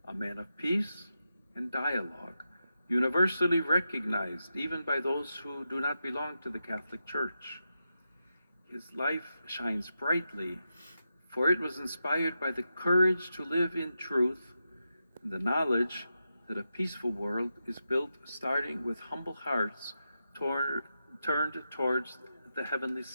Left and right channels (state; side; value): inverted; both; correlation -0.88